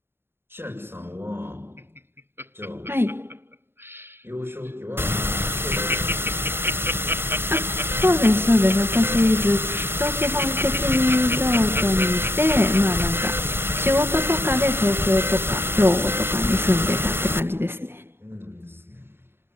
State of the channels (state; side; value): late; left; 0.11 ms